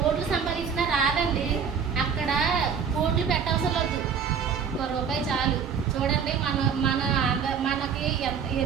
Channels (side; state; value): left; quieter; 6.8 dB